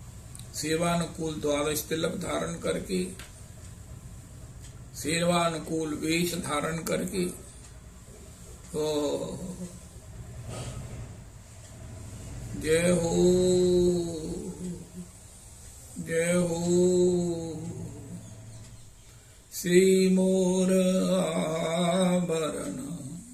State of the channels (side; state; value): both; identical; correlation 1.00